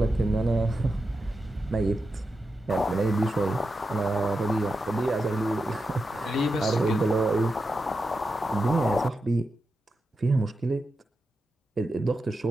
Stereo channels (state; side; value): normal; both; correlation 0.88